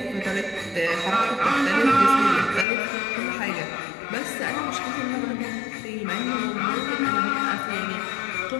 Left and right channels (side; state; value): right; drops out; at 2.7 s